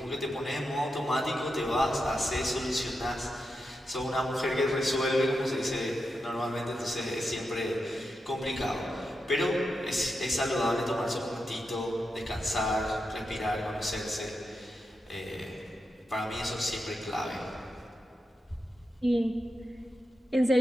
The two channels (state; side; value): normal; both; correlation 0.87